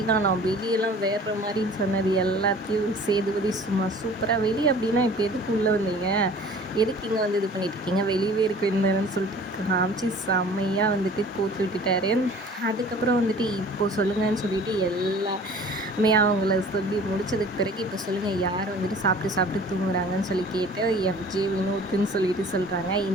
தான், நான் வெளியெல்லாம் வேறு மாதிரின்னு சொன்னது எல்லாத்தையும் சேதுபதி சும்மா சூப்பராக, வெளியே அப்படின்னா இப்போ எதுக்கு உள்ளே வந்தீங்க, எதுக்கு இங்கே வந்து இது பண்ணிகிட்ருக்கீங்க, வெளியவே இருக்க இருந்தேன்னு சொல்லிட்டு காமிச்சு செம்மையாக வந்துட்டு கோத்து விட்டுட்டாரு. அதுக்கப்புறம் வந்துட்டு இப்போது சொல்லுங்கன்னு சொல்லிட்டு எல்லாமே அவங்கள சொல்லி முடித்ததுக்கு பிறகு இப்போ சொல்லுங்கள் யார் வந்துட்டு சாப்பிட்டு தூங்குறாங்கன்னு சொல்லி கேட்டு எஃப்ஜே வினோத்துன்னு சொல்லிட்டு சொல்கிறாங்க.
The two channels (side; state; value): both; normal; correlation 0.47